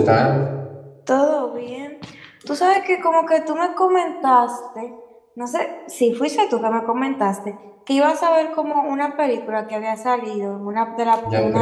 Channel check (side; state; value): both; identical; correlation 1.00